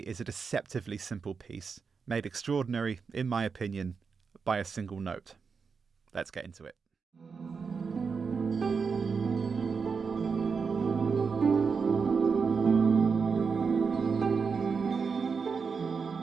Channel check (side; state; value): left; quieter; 5.4 dB